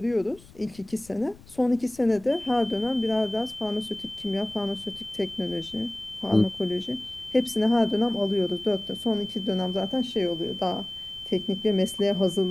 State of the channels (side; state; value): left; noise; rumble, 22 dB below the sound